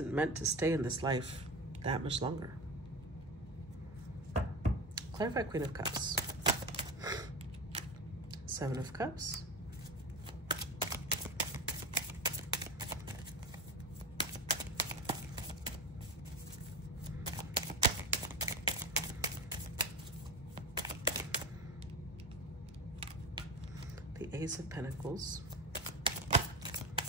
meant to stay in this life that much longer. Clarify Queen of Cups. Seven of Cups. The Ace of Pentacles.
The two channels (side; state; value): both; normal; correlation 0.24